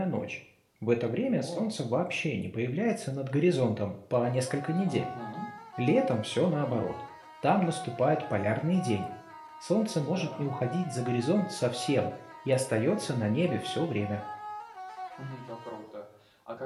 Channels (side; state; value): both; identical; correlation 1.00